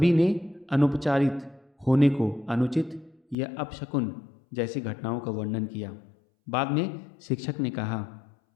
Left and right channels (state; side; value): drops out; right; at 3.4 s